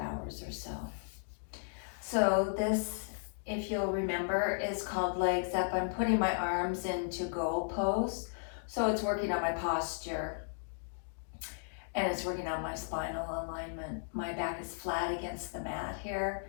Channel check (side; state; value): right; silent; digital silence